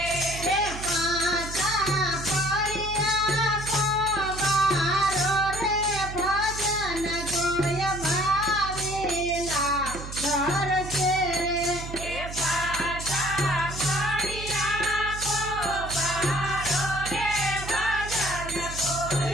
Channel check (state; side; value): noise; right; hum, 10 dB below the sound